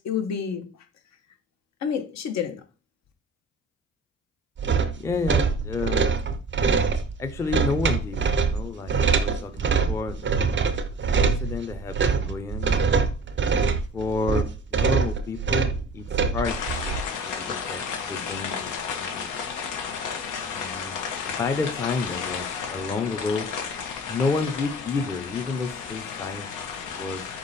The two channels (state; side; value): normal; both; correlation 0.41